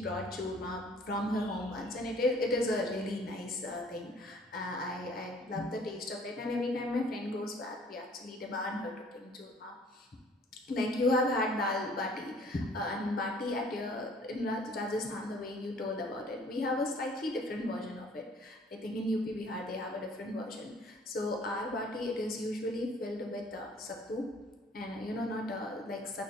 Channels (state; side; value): normal; both; correlation 0.56